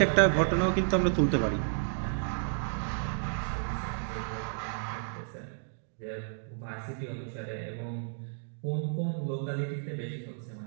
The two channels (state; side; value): silent; left; digital silence